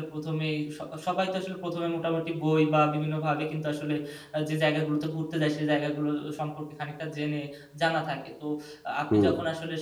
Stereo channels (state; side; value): identical; both; correlation 1.00